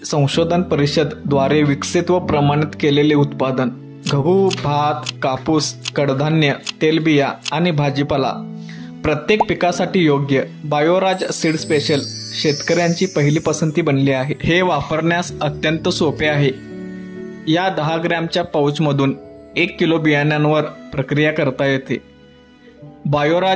संशोधन परिषद द्वारे विकसित व प्रमाणित केलेले उत्पादन. गहू, भात, कापूस, कडधान्य, तेलबिया आणि भाजीपाला प्रत्येक पिकासाठी योग्य बायोराज सीड स्पेशल शेतकऱ्यांची पहिली पसंती बनली आहे. हे वापरण्यास अत्यंत सोपे आहे. या 10 ग्रॅमच्या पाऊचमधून 1 किलो बियाण्यांवर प्रक्रिया करता येते.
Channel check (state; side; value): identical; both; correlation 1.00